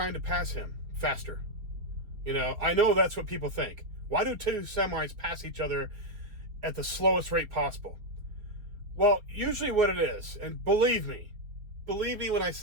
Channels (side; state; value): left; late; 5.0 ms